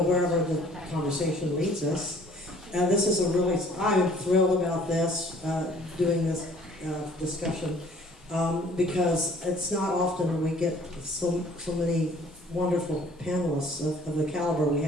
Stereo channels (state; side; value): normal; both; correlation 0.55